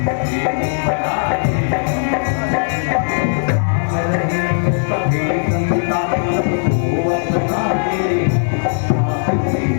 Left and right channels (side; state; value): right; silent; 68 dB below the other